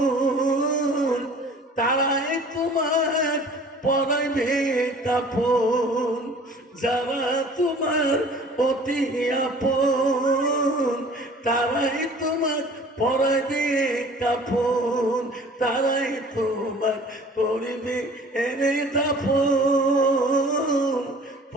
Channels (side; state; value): both; normal; correlation 0.48